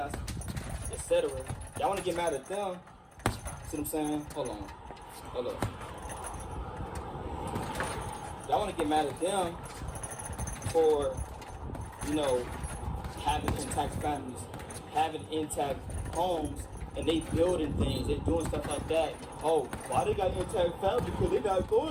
etc. Y'all want to get mad at them. See what I'm saying? Hold on. Y'all want to get mad at them for, having intact families, having intact homes, and they building things, they doing stuff like that. Oh, why they got intact families? Because they not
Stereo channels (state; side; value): identical; both; correlation 1.00